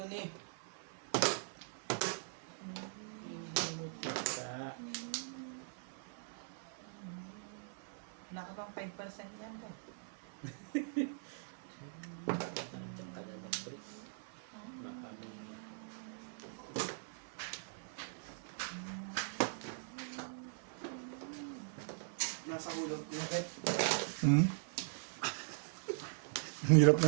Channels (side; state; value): left; silent; 50 dB below the other